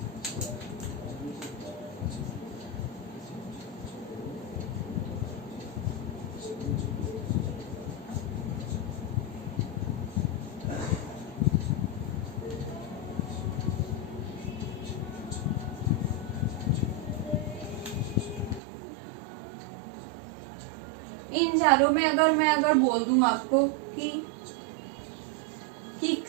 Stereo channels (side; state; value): left; drops out; at 18.6 s